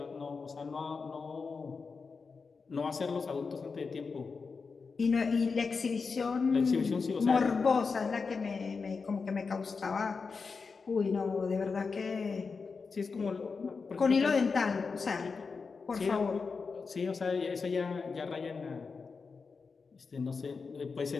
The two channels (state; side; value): quieter; right; 4.9 dB